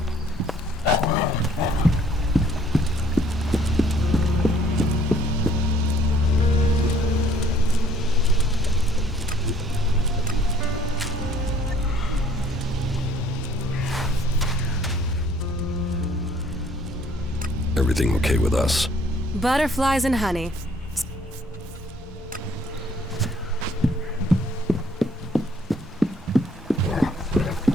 Everything okay with us? Butterflies and honey.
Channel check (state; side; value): normal; both; correlation 0.60